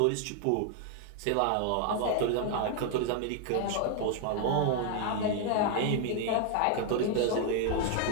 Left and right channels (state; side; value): different; both; correlation 0.00